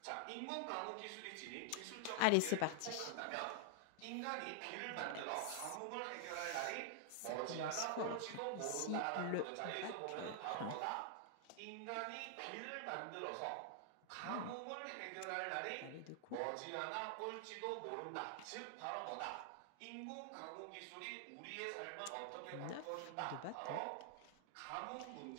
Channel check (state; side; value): different; both; correlation 0.00